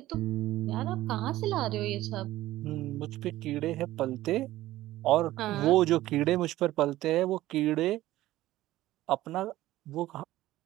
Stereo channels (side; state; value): left; quieter; 15.7 dB